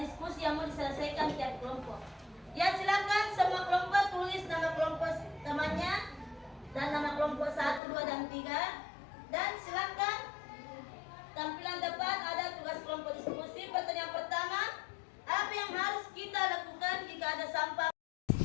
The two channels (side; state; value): right; drops out; at 7.8 s